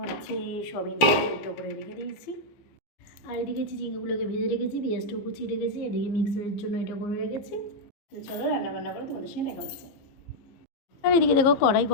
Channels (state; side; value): late; right; 15 ms